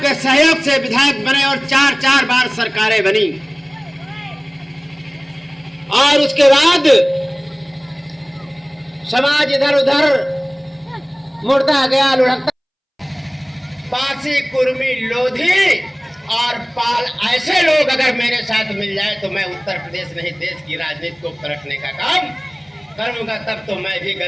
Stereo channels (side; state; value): both; identical; correlation 1.00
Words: सहयोग से विधायक बने और 4 बार सरकारें बनी। और उसके बाद समाज इधर उधर मुड़ता गया, लुढ़कता। पासी, कुर्मी, लोधी और पाल ऐसे लोग अगर मेरे साथ मिल जाए तो मैं उत्तर प्रदेश नहीं देश की राजनीति को पलटने का काम करूंगा। तब तो मैं भी